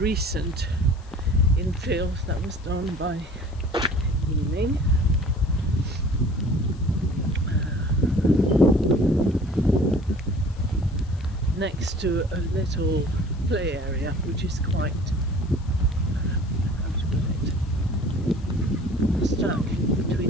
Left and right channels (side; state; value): left; noise; hiss, 28 dB below the sound